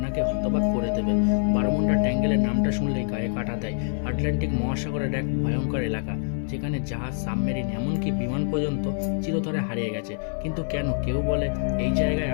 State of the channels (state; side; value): silent; right; 61 dB below the other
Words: হতবাক করে দেবে। বারমুন্ডা ট্যাঙ্গেলের নামটা শুনলেই গায়ে কাটা দেয়। আটলান্টিক মহাসাগরের এক ভয়ঙ্কর এলাকা, যেখানে জাহাজ, সাবমেরিন, এমনকি বিমান পর্যন্ত চিরতরে হারিয়ে গেছে। কিন্তু কেন? কেউ বলে এই জায়গায়